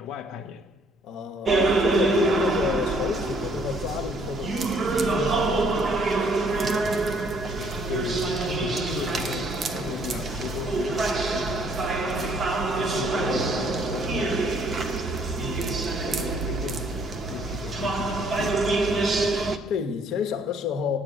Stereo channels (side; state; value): both; normal; correlation 0.64